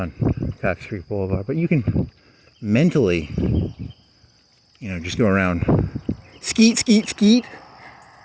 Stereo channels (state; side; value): identical; both; correlation 1.00